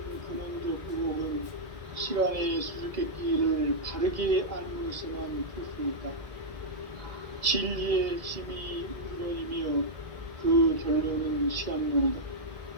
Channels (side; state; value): left; late; 1.7 ms